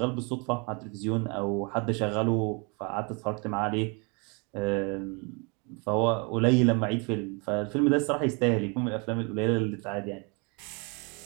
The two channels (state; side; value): quieter; left; 32.1 dB